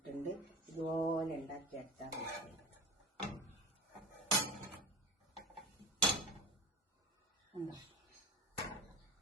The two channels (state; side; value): normal; both; correlation 0.30